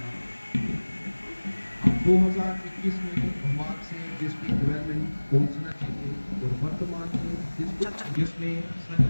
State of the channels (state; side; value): inverted; both; correlation -1.00